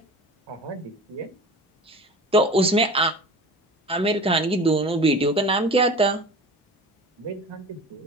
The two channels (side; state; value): both; normal; correlation 0.37